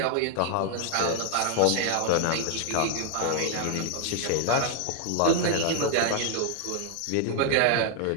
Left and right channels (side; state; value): both; different; correlation 0.00